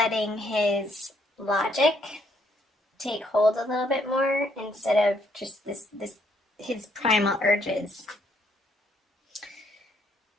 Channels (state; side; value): normal; both; correlation 0.70